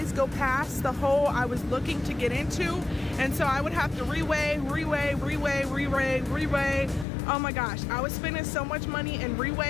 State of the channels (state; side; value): drops out; right; at 7.1 s